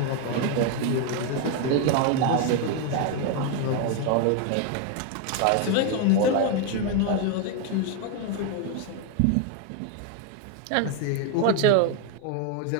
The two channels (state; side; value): different; both; correlation 0.01